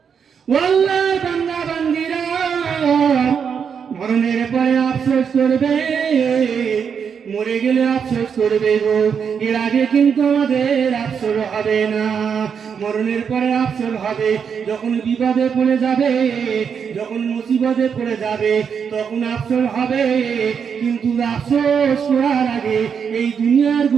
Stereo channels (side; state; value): left; quieter; 6.9 dB